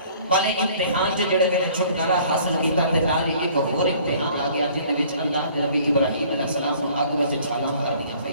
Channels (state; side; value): inverted; both; correlation -0.54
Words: والے امتحان تے جڑے بلے چھٹکارا حاصل کیتا تے نال ہی ایک اور امتحان آ گیا جن وچ اللہ نے نبی ابراہیم علیہ السلام کو اگ وچ چھالاں مار دیا